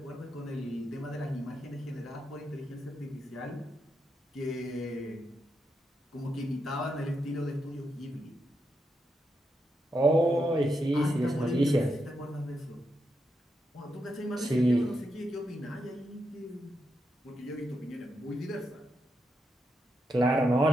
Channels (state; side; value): normal; both; correlation 0.83